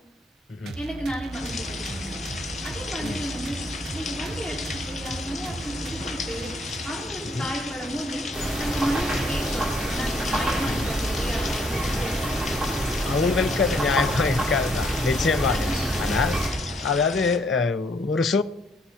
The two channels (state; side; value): normal; both; correlation 0.68